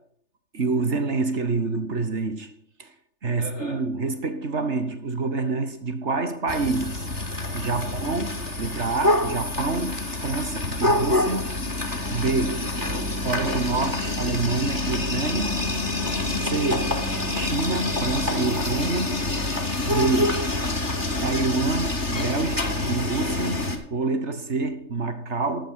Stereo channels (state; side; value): late; left; 3.3 ms